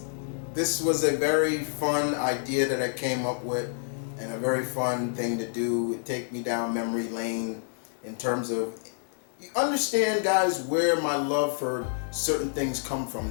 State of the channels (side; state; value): right; silent; 59 dB below the other